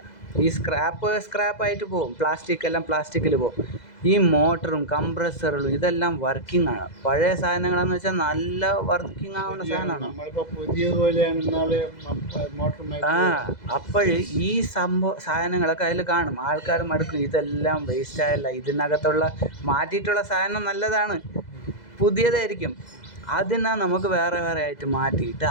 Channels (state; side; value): late; right; 2.0 ms